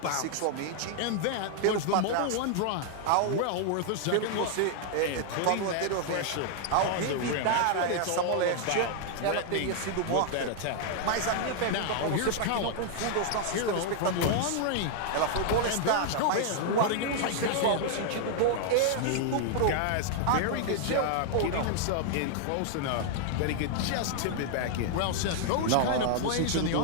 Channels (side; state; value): both; different; correlation 0.00